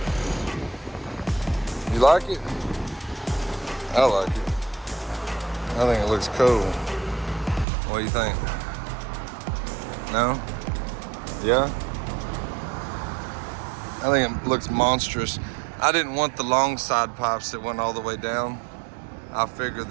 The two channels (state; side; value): drops out; left; at 7.7 s